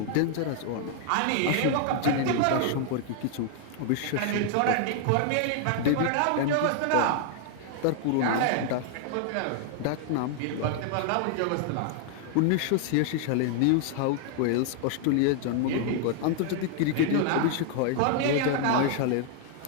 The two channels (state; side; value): different; both; correlation 0.00